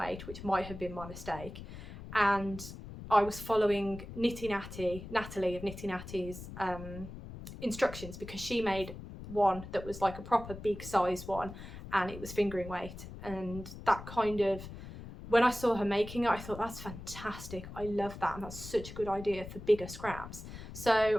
which might have been my mistake. And I was following Natalie of Knitty Natty's instructions, because she made one that was like a proper big size one, and it was fingering weight. And that kind of, when I saw her making it, I thought, that's fantastic. I love that, and that's such a good idea for bigger scraps.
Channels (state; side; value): noise; left; rumble, 12 dB below the sound